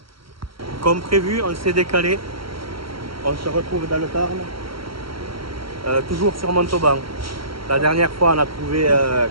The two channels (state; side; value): late; left; 0.74 ms